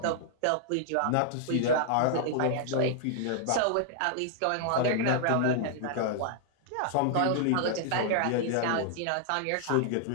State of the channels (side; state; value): both; different; correlation -0.01